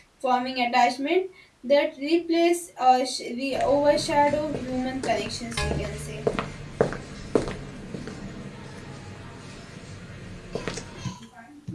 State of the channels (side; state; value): both; identical; correlation 1.00